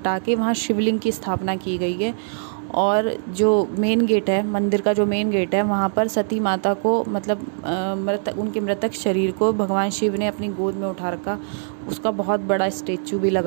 के वहाँ शिवलिंग की स्थापना की गई है। और जो मेन गेट है, मंदिर का जो मेन गेट है, वहाँ पर सती माता को मतलब उनके मृतक शरीर को भगवान शिव ने अपनी गोद में उठा रखा, उसका बहुत बड़ा स्टेचू भी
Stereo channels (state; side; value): silent; left; digital silence